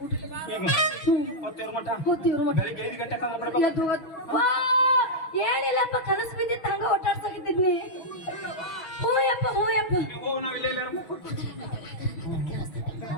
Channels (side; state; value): right; late; 6.1 ms